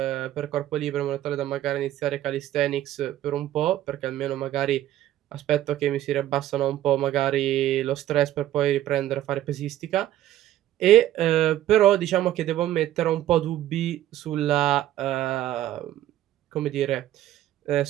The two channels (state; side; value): quieter; left; 13.1 dB